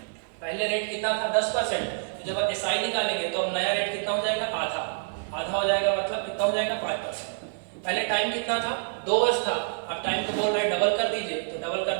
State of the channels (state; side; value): silent; left; digital silence